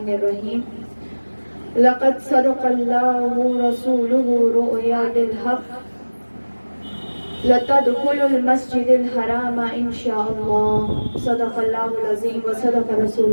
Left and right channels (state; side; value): inverted; both; correlation -1.00